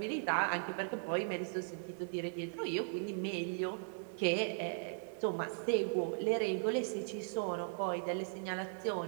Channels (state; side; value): silent; left; digital silence